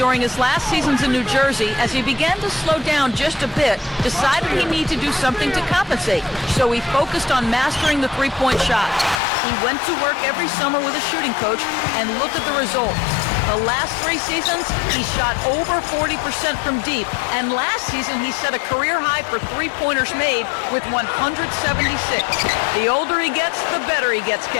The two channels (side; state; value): right; drops out; at 9.2 s